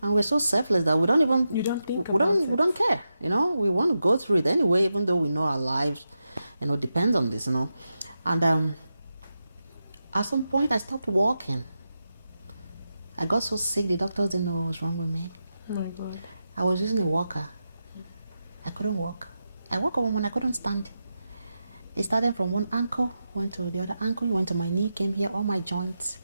and we're so selfless that we don't even You don't think we about don't it. we don't care, you know. We want to go through it anyway, even though we know our lives, you know, depends on this, you know. And at some point I stopped walking. I got so sick the doctors didn't know what was wrong with me. Oh my God. I was using a walker. I couldn't walk. I woke up when I couldn't stand. It started from one ankle, went to the other ankle, went to my knee, came here, all my joints.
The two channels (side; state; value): both; inverted; correlation -0.89